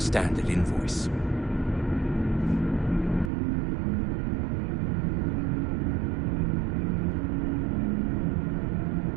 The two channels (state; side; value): drops out; left; at 3.3 s